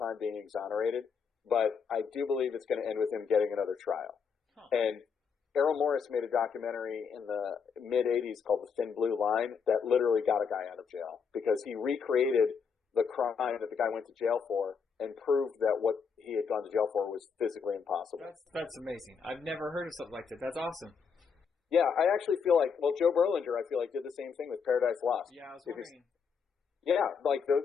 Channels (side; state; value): right; quieter; 6.1 dB